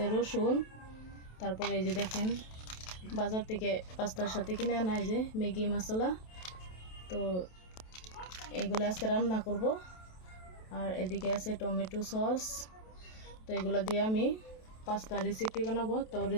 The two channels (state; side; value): late; right; 27 ms